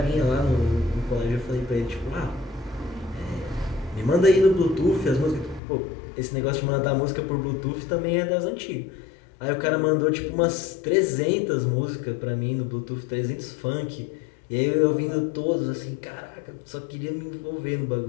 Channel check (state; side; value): drops out; right; at 5.6 s